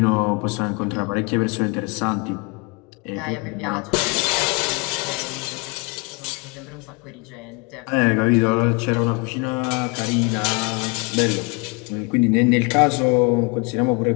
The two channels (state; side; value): quieter; right; 30.7 dB